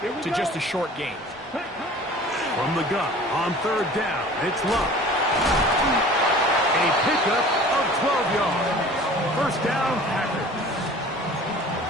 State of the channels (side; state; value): both; normal; correlation 0.45